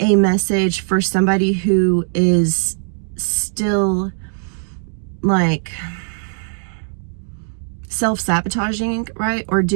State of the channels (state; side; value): silent; left; digital silence